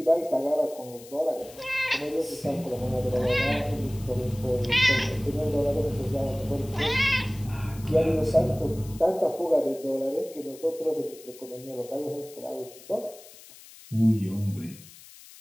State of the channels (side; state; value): left; noise; hiss, 20 dB below the sound